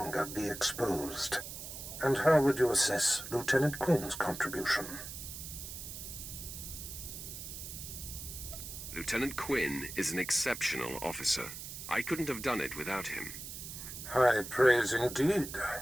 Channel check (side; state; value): right; noise; hiss, 9 dB below the sound